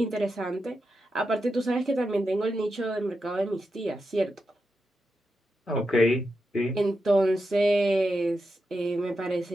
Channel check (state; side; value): normal; both; correlation 0.87